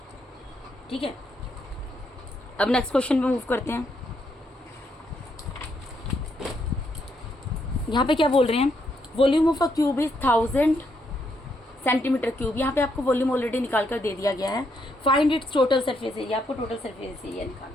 ठीक है, अब नेक्स्ट क्वेश्चन पे मूव करते हैं। यहाँ पे क्या बोल रहे हैं, volume of a cube is 1000 centimetre cube. यहाँ पे आपको वॉल्यूम ऑलरेडी निकाल कर दे दिया गया है। Find its total surface area, आपको टोटल सरफेस एरिया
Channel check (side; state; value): both; normal; correlation 0.76